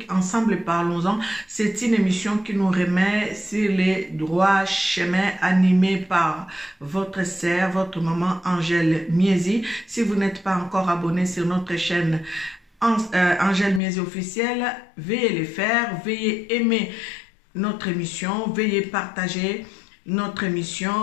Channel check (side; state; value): right; drops out; at 13.8 s